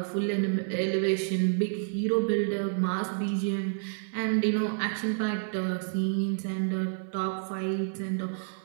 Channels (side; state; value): left; silent; digital silence